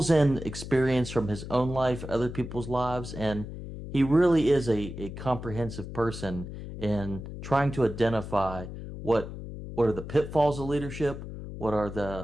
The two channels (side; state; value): left; noise; hum, 10 dB below the sound